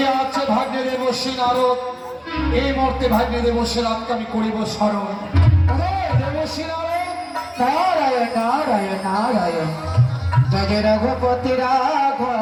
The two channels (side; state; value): both; identical; correlation 1.00